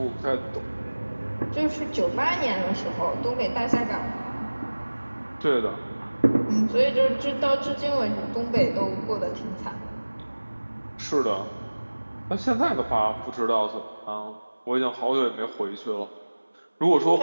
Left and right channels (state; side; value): inverted; both; correlation -1.00